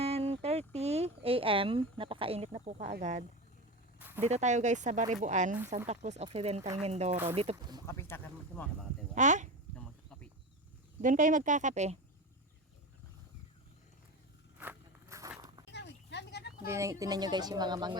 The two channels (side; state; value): both; normal; correlation 0.25